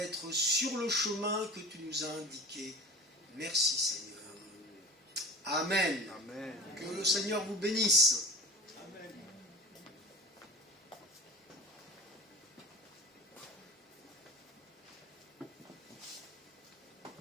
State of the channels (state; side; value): normal; both; correlation 0.36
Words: sur le chemin que tu nous as indiqué. Merci, Seigneur. Amen. Amen. Que le Seigneur vous bénisse.